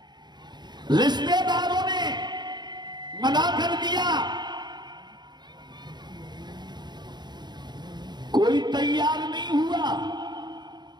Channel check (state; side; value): late; left; 0.21 ms